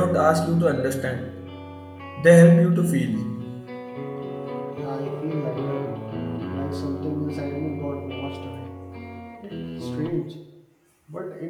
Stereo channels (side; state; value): both; identical; correlation 1.00